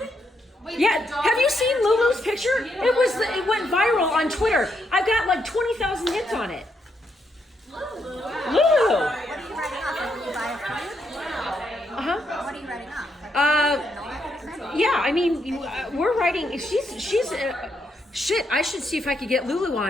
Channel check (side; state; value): both; normal; correlation 0.78